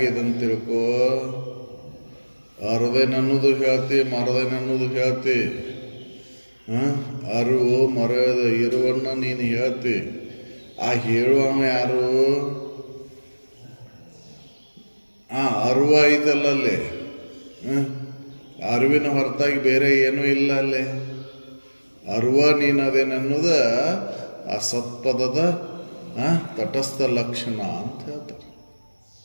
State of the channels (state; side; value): inverted; both; correlation -1.00